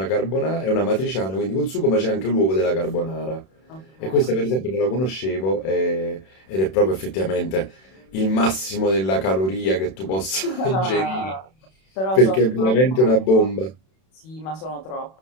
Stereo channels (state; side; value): late; right; 32 ms